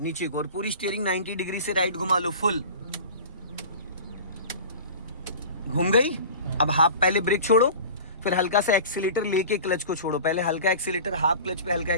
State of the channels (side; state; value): both; inverted; correlation -0.38